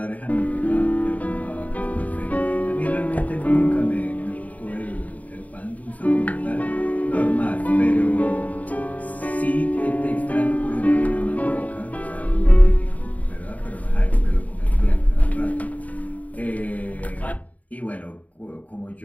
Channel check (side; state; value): right; late; 0.071 ms